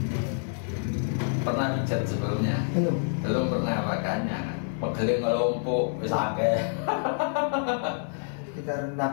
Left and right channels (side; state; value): right; silent; 60 dB below the other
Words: pernah pijat sebelumnya? Belum pernah, makanya pegel ngelompok sakit. Sekitar